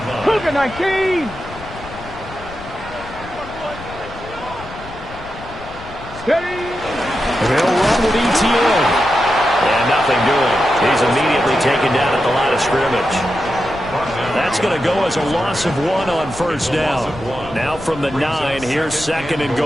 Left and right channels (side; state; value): left; noise; rumble, 16 dB below the sound